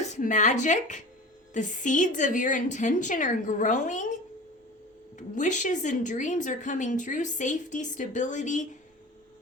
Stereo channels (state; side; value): normal; both; correlation 0.36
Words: magic, the seeds of your intention are growing. Wishes and dreams are coming true. Safety, stability,